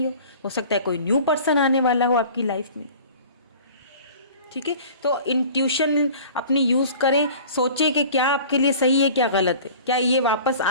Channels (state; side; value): inverted; both; correlation -0.43